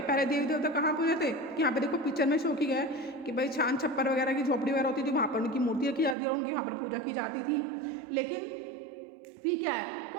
पहले देवी देवता कहाँ पूजे थे कि यहाँ पे देखो पिक्चर में शो किया है कि भाई छान छप्पर वगैरह की झोपड़ी वगैरह होती थी, वहाँ पर उनकी मूर्तियाँ की जाती है और उनकी वहाँ पर पूजा की जाती थी। लेकिन फिर क्या है,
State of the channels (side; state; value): left; drops out; at 6.2 s